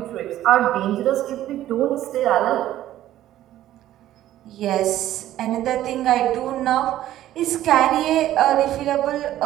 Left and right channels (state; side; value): quieter; left; 13.3 dB